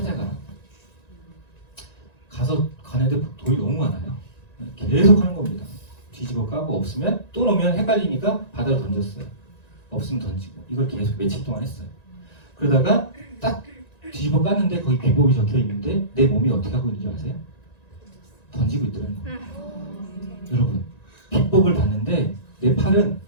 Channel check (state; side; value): late; right; 1.9 ms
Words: 가서 가는데 돌이 너무 많아요. 계속 하는 겁니다. 뒤집어 까고 없으면 또 놓으면 헷갈리니까 바다로 던졌어요. 없으면 던지고 이걸 계속 며칠 동안 했어요. 그러다가 딱 뒤집어 깠는데 거기 비법이 적혀 있는데 내 몸이 어떻게 하고 있는지 아세요? 던지고 있더라는 거예요. 여러분 비법을 봤는데 내 팔은